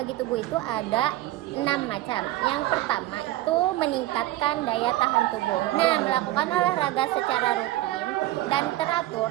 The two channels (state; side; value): quieter; left; 16.0 dB